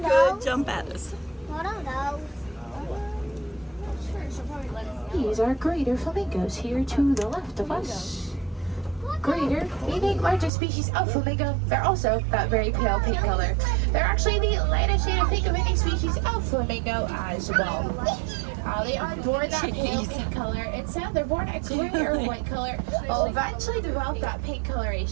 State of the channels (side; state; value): left; drops out; at 10.5 s